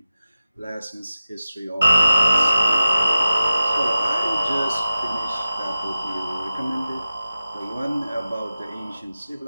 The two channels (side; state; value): both; inverted; correlation -0.94